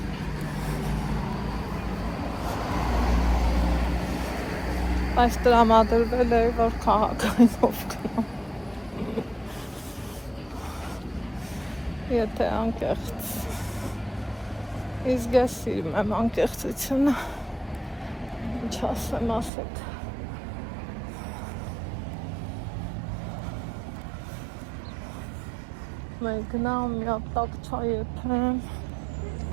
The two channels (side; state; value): left; drops out; at 19.5 s